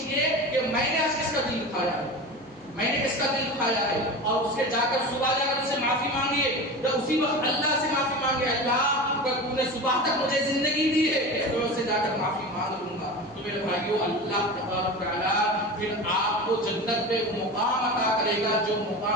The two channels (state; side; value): noise; right; hum, 28 dB below the sound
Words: کہ میں نے آج کس کا دل دکھایا ہے، میں نے کس کا دل دکھایا ہے، اور اس کے جا کر صبح جا کر اس سے معافی مانگیے، یا اسی وقت اللہ سے معافی مانگے اللہ اگر تو نے صبح تک مجھے زندگی دی ہے تو میں اس سے جا کر معافی مانگ لوں گا۔ تو میرے بھائیو اللہ تبارک و تعالیٰ پھر آپ کو جنت میں وہ مقام عطا کرے گا جو